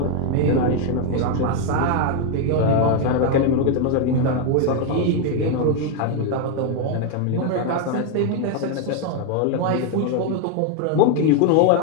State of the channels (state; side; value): different; both; correlation 0.01